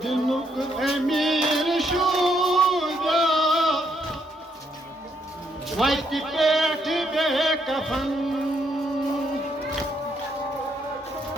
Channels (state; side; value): normal; both; correlation 0.74